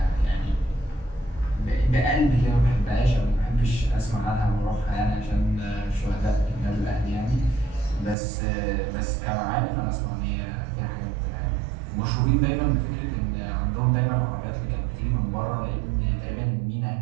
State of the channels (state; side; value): drops out; left; at 8.2 s